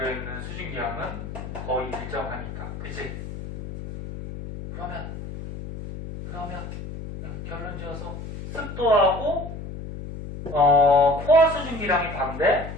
수증기량은 거의 일정하니까. 그치? 그러면 결론 지어서 습도하고 포화 수증기량이 반비례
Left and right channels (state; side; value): noise; left; hum, 9 dB below the sound